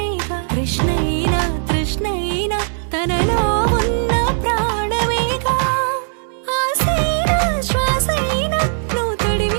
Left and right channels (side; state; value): left; silent; digital silence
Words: కృష్ణైనా తృష్ణైనా తనలో ఉన్న ప్రాణమేగా ఆసైనా శ్వాసైనా నువ్వు